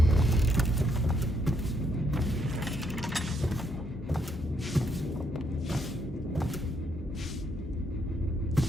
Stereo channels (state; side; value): normal; both; correlation 0.74